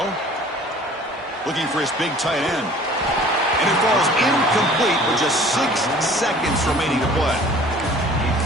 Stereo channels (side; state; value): both; normal; correlation 0.49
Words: Looking for his big tight end. And it falls incomplete with just 6 seconds remaining to play.